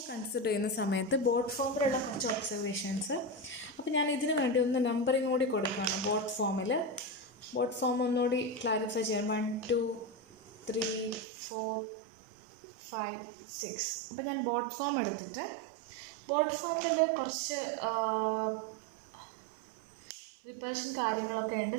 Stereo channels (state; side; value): drops out; left; at 11.2 s